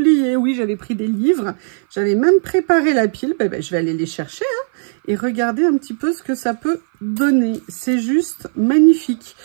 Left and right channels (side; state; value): left; silent; 58 dB below the other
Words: Oui, j'avais pris des livres. J'avais même préparé la pile. Je vais aller les chercher, hein, et regarder un petit peu ce que ça peut donner. C'est juste magnifique.